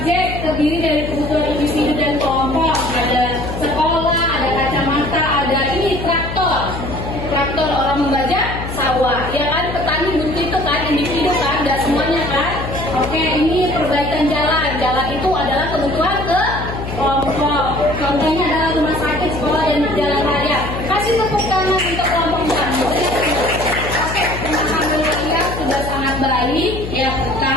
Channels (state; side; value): noise; left; hum, 7 dB below the sound